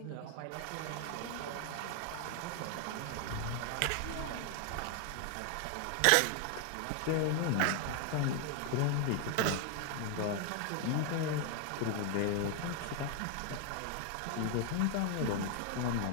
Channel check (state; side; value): different; both; correlation 0.00